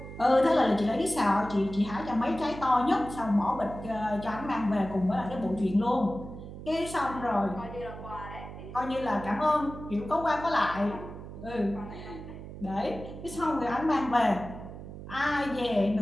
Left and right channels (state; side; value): noise; right; hum, 12 dB below the sound